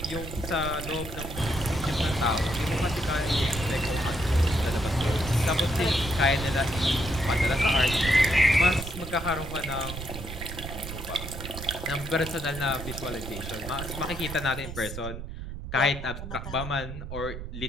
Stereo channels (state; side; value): noise; right; rumble, 9 dB below the sound